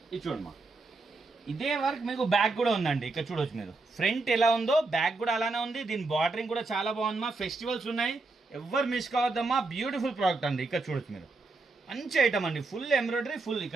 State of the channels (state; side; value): quieter; left; 3.5 dB